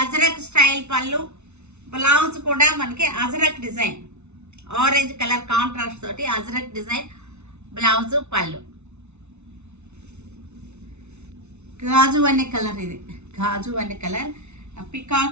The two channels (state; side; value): late; left; 0.81 ms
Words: అజరక్ స్టైల్ పళ్ళు. బ్లౌజ్ కూడా మనకి ajrakh design, orange colour contrast తోటి అజరక్ డిజైన్ బ్లౌజ్, పళ్ళు. గాజు అనే కలర్ ఇది. గాజు అనే కలర్